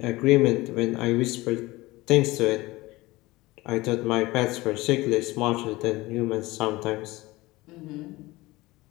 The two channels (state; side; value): quieter; right; 20.3 dB